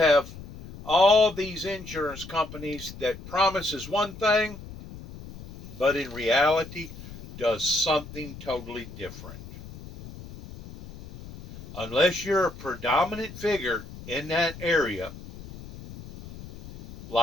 all these insurance companies that promises one thing, but in reality does something totally different. Unless you're a predominant figure in that area,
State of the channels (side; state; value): left; noise; rumble, 14 dB below the sound